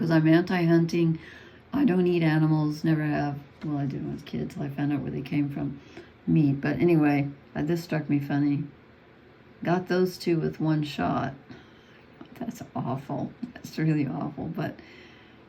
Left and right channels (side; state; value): both; identical; correlation 1.00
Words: I'm anti-hunting. I don't eat animals, never have. Well, I did when I was a kid till I found out where they came from, meat. But anyway, this struck me funny. "Got those two with one shot." That's awful. That's really awful, but